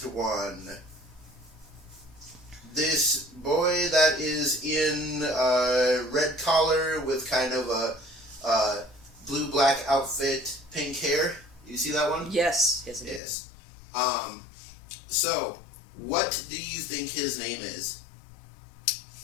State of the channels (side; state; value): right; drops out; at 13.2 s